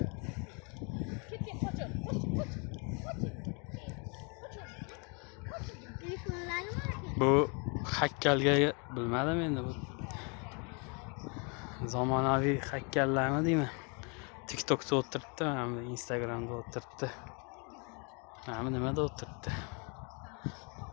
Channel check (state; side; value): quieter; right; 34.5 dB